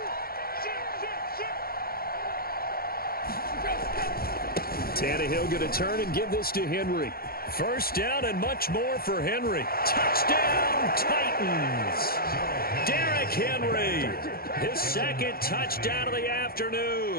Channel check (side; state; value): right; late; 0.44 ms